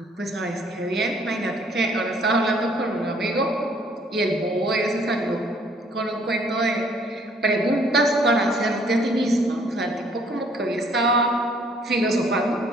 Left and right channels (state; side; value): normal; both; correlation 0.62